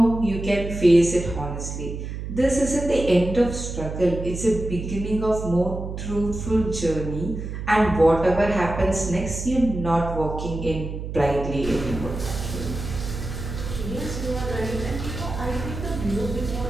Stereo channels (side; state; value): right; noise; hum, 6 dB below the sound